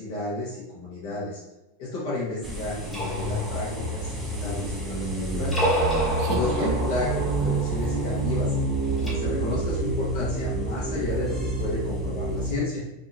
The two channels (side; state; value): both; normal; correlation 0.18